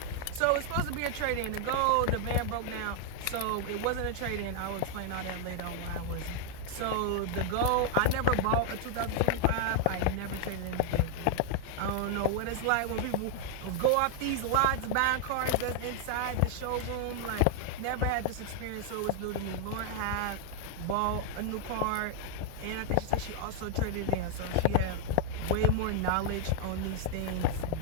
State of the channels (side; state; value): both; different; correlation 0.00